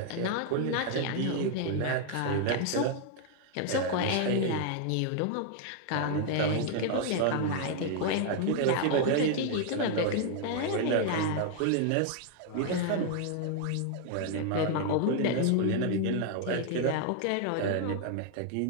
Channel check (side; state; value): both; different; correlation 0.00